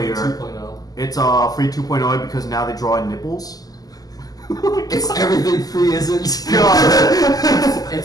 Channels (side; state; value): right; late; 0.18 ms